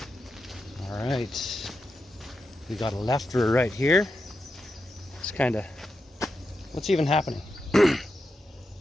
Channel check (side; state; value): both; normal; correlation 0.88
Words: Alright. We got a left or a right here. It's kind of... What's even happening?